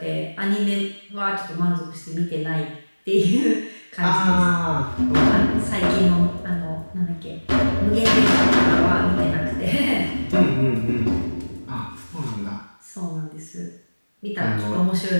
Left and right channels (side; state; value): both; inverted; correlation -1.00